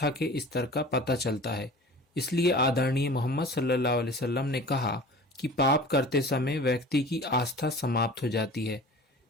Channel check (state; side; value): normal; both; correlation 0.40